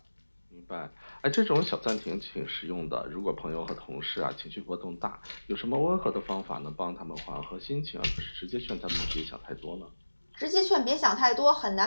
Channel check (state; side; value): inverted; both; correlation -1.00